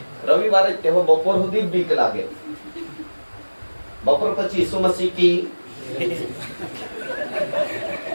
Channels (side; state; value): both; inverted; correlation -1.00